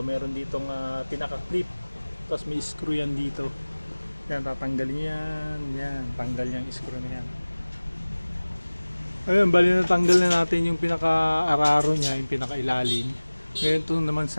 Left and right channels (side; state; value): both; inverted; correlation -1.00